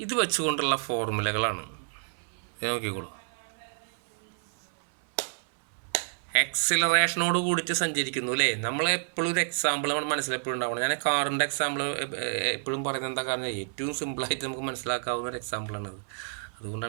ഇത് വെച്ചുകൊണ്ടുള്ള ഫോർമുലകളാണ്. നോക്കിക്കോളൂ. എക്സിലറേഷനോട് കൂടിയിട്ട് സഞ്ചരിക്കുന്നു അല്ലേ? നമ്മളെപ്പോഴും ഒരു എക്സാമ്പിൾ നമ്മുടെ മനസ്സിലെപ്പോഴും ഉണ്ടാവണം. ഞാൻ കാറിൻ്റെ എക്സാമ്പിൾ എപ്പോഴും പറയുന്നത് എന്താ കാരണം, ഏറ്റവും സിമ്പിളായിട്ട് നമുക്ക് മനസ്സിലാക്കാവുന്ന ഒരു എക്സാമ്പിളാണത്.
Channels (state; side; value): silent; left; 58 dB below the other